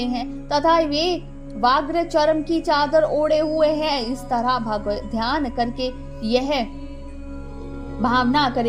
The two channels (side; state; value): both; identical; correlation 1.00